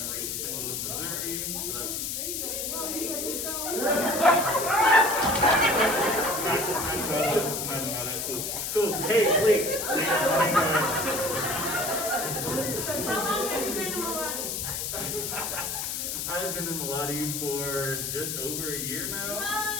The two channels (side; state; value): left; noise; hiss, 3 dB below the sound